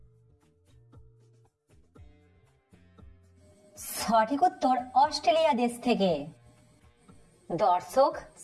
সঠিক উত্তর অস্ট্রেলিয়া দেশ থেকে। দর্শক,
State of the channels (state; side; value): identical; both; correlation 1.00